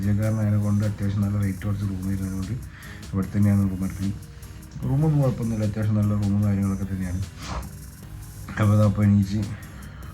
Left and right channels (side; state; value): both; identical; correlation 1.00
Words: കൊണ്ട് അത്യാവശ്യം നല്ല റേറ്റ് കുറച്ച് റൂം വരുന്നതുകൊണ്ട് ഇവിടെ തന്നെയാണ് റൂം എടുക്കുന്നത്. റൂമൊന്നും കുഴപ്പമൊന്നുമില്ല, അത്യാവശ്യം നല്ല റൂമും കാര്യങ്ങളൊക്കെ തന്നെയാണ്. അപ്പോൾ അതപ്പോൾ എണീച്ച്